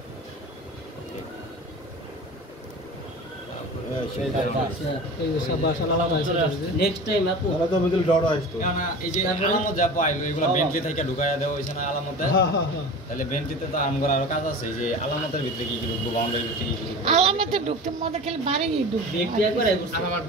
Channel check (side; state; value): both; normal; correlation 0.35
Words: দাও। এই যে সব বাসা আলাদা আছে নেক্সট টাইম আপু কেননা এই যে আলামত যা পাইলো এগুলো বেন্টলি থেকে ঢুকাইয়া দেওয়া হয়েছে না আলামতে, হ্যাঁ হ্যাঁ হ্যাঁ তাহলে বেন্টলিতে তো আমগর আরো কাজ আছে, এই যে আলামতের ভিতরে কি কি ঢুকবো, বাউন্ডারির ভিতরে কি কি ঢুকবো, আলামতে ঢুকতে মধ্যে খালি বাড়ি ঢুকবে ব্যক্তি একবার আর আমার